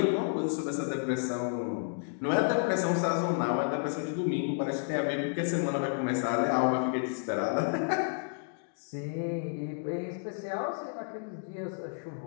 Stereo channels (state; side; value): silent; right; digital silence